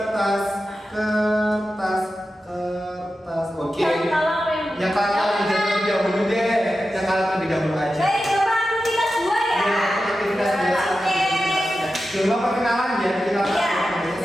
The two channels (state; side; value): normal; both; correlation 0.92